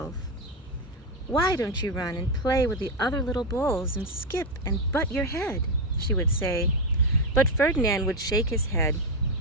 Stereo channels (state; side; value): normal; both; correlation 0.08